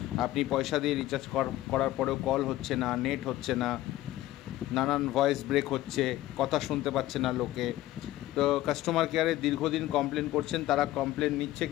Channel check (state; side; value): quieter; right; 15.5 dB